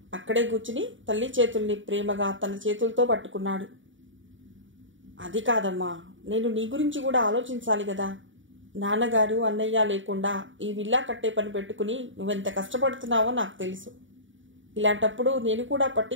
అక్కడే కూర్చుని తల్లి చేతుల్ని ప్రేమగా తన చేతులతో పట్టుకున్నాడు. అది కాదమ్మా, నేను నీ గురించి కూడా ఆలోచించాలి కదా. నాన్నగారు అన్నయ్య లేకుండా ఈ విల్లా కట్టే పని పెట్టుకుని నువ్వెంత కష్టపడుతున్నావో నాకు తెలుసు. ఇలాంటప్పుడు నేను కూడా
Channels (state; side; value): late; left; 0.56 ms